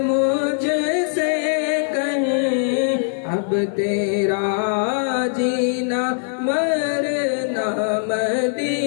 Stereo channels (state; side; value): silent; right; digital silence